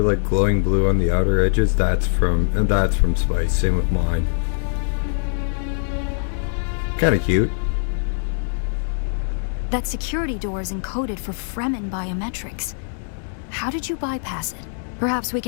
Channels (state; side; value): silent; right; digital silence